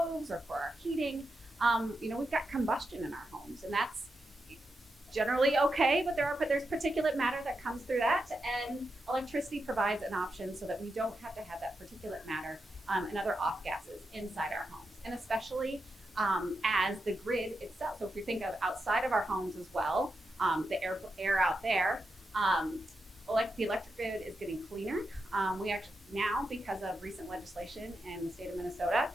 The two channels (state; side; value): normal; both; correlation 0.87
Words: or for our heating, we've got combustion in our homes, and that's generally okay, but there's particulate matter that comes through that, and electricity provides an option so that we don't have to have that particulate matter and other off gases inside our homes, and especially as the grid itself. So if we think of outside of our homes as well, the air out there, the electric grid is getting cleaner. We actually now, because of recent legislation in the state of Minnesota,